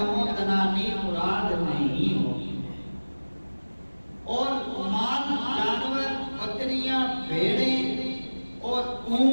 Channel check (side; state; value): both; inverted; correlation -1.00